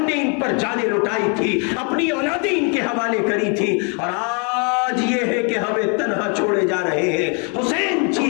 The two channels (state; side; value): quieter; right; 36.4 dB